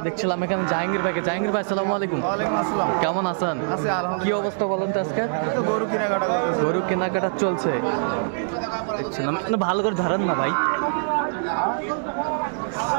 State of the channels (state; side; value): silent; left; digital silence